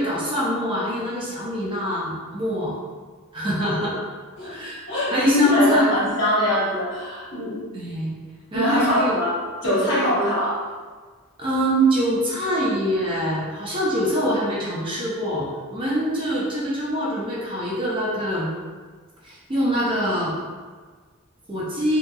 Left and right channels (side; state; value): both; normal; correlation 0.32